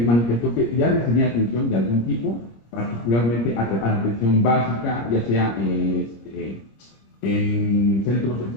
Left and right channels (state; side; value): late; right; 26 ms